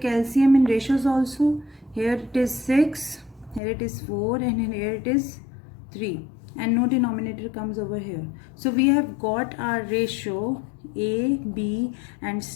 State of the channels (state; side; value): drops out; right; at 3.6 s